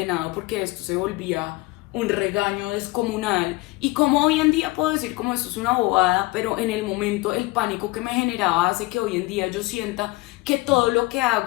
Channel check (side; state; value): right; quieter; 21.9 dB